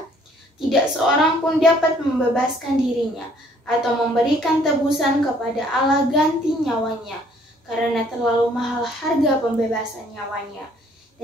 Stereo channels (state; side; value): normal; both; correlation 0.61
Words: tidak seorang pun dapat membebaskan dirinya atau memberikan tebusan kepada Allah ganti nyawanya, karena terlalu mahal harga pembebasan nyawanya